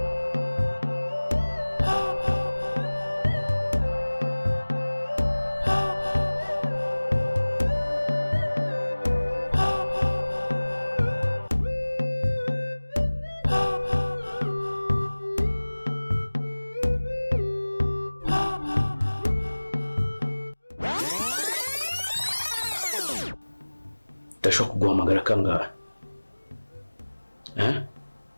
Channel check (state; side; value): inverted; both; correlation -1.00